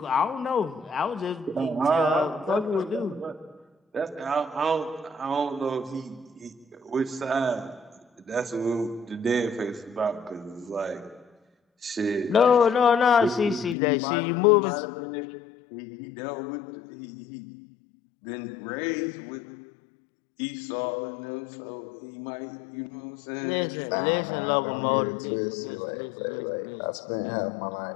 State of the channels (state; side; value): drops out; right; at 13.8 s